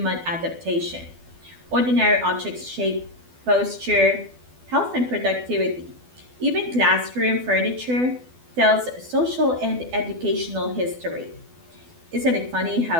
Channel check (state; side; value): late; left; 12 ms